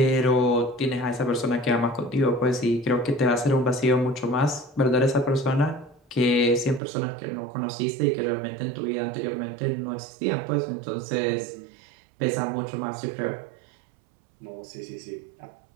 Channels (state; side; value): drops out; left; at 6.8 s